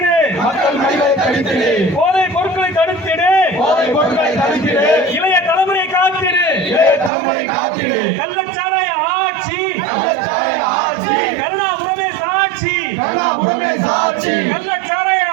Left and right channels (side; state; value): left; drops out; at 7.1 s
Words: மக்கள் மடிவை தடுத்திடு, போதை பொருட்களை தடுத்திடு, போதை பொருட்களை தடுத்திடு, இளைய தலைமுறை காத்திடு, இளைய தலைமுறை காத்திடு, கள்ளச்சாராய ஆட்சி, கள்ளச்சாராய ஆட்சி, கருணாபுரமே சாட்சி, கருணாபுரமே சாட்சி, கள்ளச்சாராய